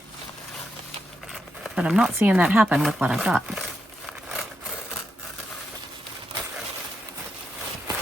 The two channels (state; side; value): normal; both; correlation 0.84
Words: but I'm not seeing that happen with what I've got.